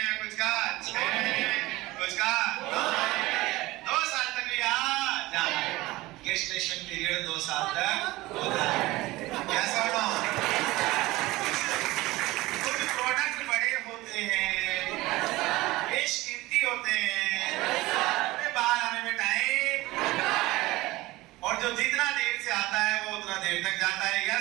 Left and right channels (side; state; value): left; quieter; 19.4 dB